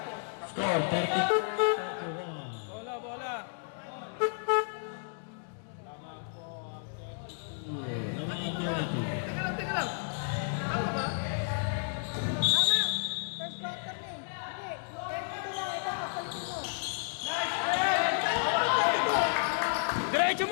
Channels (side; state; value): right; silent; digital silence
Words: Score, 31. Bola! Naman ang 32. Tama! First quarter na eh. Hindi. Ito lang. Ito, papalitin mo. Diretso